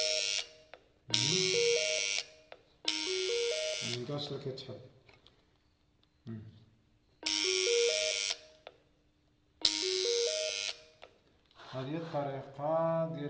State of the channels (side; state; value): both; identical; correlation 1.00